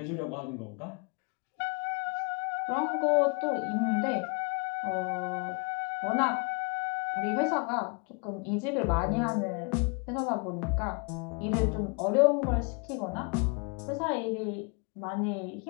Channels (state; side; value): quieter; right; 34.5 dB